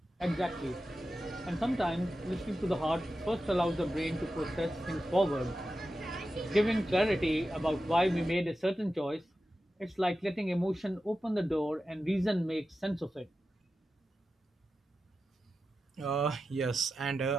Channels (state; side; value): normal; both; correlation 0.92